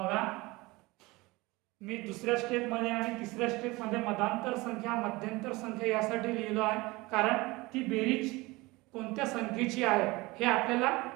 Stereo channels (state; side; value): quieter; left; 22.3 dB